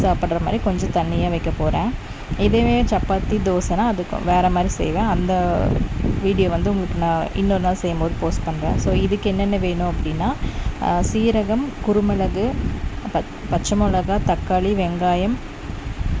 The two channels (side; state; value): both; identical; correlation 1.00